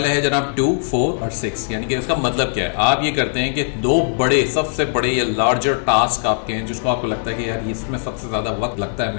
है जनाब 2, 4 और 6, यानी कि इसका मतलब क्या है। आप ये करते हैं कि दो बड़े, सबसे बड़े या लार्जर टास्क आपके हैं जिसको आपको लगता है कि यार इसमें सबसे ज़्यादा वक्त लगता है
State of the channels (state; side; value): silent; right; digital silence